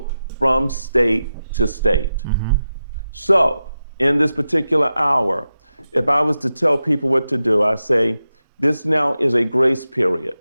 from state to state. So in this particular hour, if I was to tell people what to do, I say, this now is a grace period.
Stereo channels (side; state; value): both; inverted; correlation -0.91